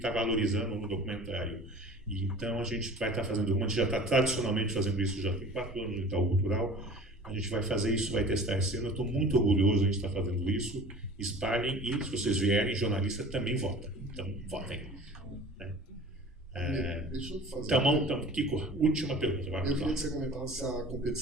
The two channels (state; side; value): normal; both; correlation 0.42